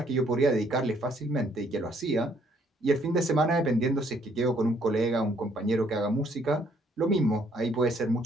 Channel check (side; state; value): both; normal; correlation 0.66